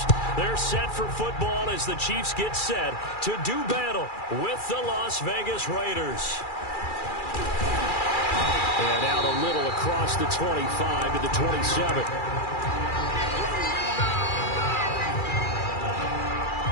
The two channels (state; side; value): late; right; 2.4 ms